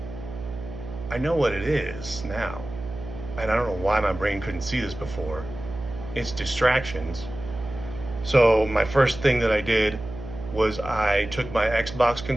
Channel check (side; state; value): right; noise; hum, 11 dB below the sound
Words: I know what it is now. And I don't know why my brain couldn't see this before. It's distractions. So my first thing that I did was I took my Xbox